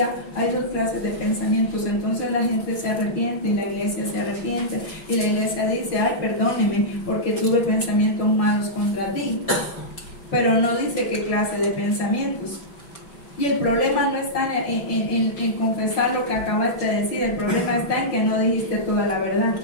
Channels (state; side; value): late; right; 5.5 ms